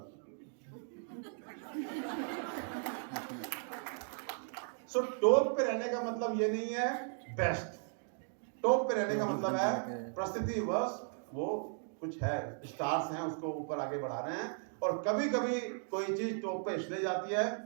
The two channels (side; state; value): left; silent; 53 dB below the other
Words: सो टॉप पे रहने का मतलब ये नहीं है बेस्ट, टॉप पे रहने का मतलब है परिस्थिति बस वो कुछ है, स्टार्स हैं, उसको ऊपर आगे बढ़ा रहे हैं। और कभी कभी कोई चीज टॉप पे इसलिए जाती है